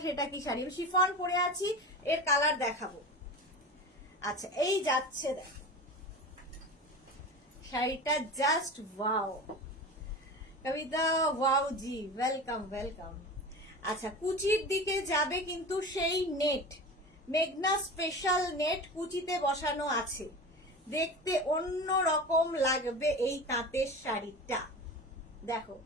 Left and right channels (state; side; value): normal; both; correlation 0.31